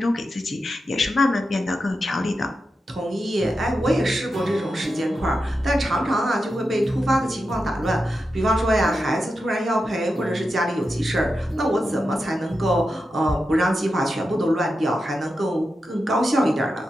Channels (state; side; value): normal; both; correlation 0.89